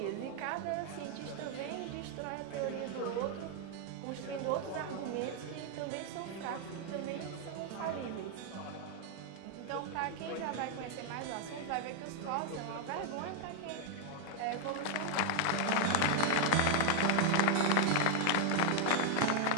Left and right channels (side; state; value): both; different; correlation 0.00